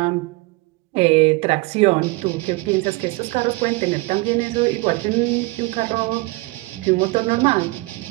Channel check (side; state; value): left; quieter; 23.6 dB